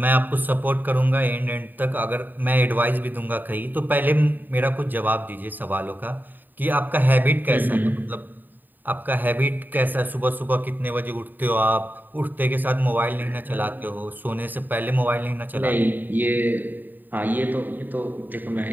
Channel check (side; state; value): left; late; 0.089 ms